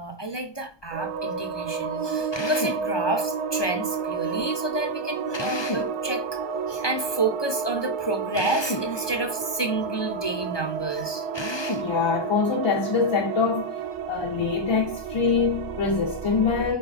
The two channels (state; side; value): late; right; 1.2 ms